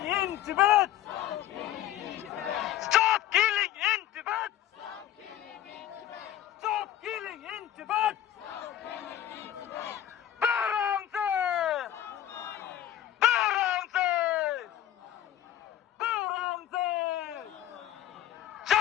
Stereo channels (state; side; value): quieter; right; 11.9 dB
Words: in Tibet! Stop killing in Tibet! Stop killing in Tibet! Barangse! Barangse! Barangse!